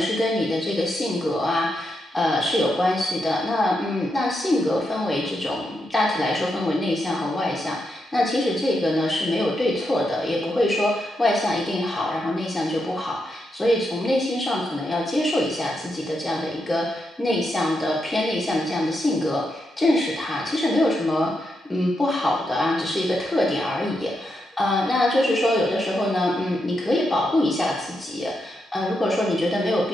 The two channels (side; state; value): both; normal; correlation 0.83